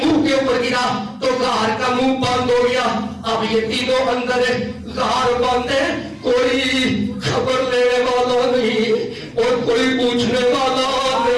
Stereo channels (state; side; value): identical; both; correlation 1.00